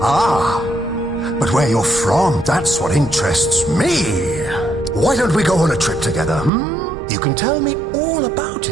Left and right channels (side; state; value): left; drops out; at 6.5 s